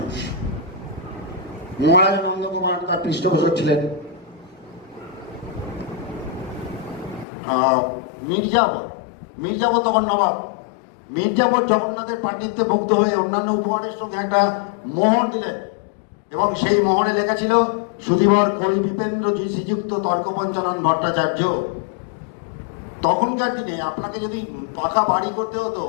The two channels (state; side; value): drops out; right; at 7.2 s